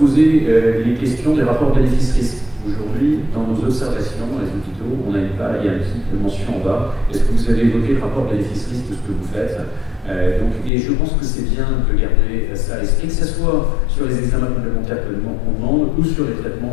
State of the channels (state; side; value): drops out; right; at 10.7 s